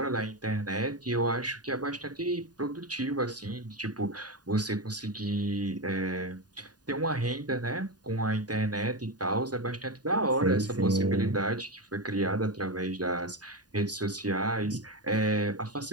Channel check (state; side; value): late; left; 0.69 ms